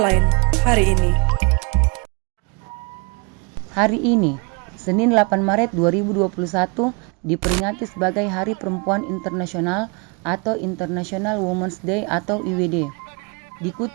hari ini. Hari ini, Senin 8 Maret 2021, diperingati sebagai Hari Perempuan Internasional atau International Women's Day atau IWD.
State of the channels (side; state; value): left; quieter; 32.1 dB